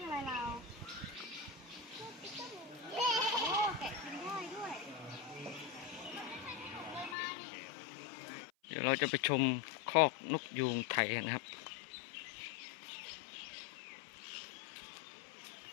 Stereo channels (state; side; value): drops out; right; at 7.2 s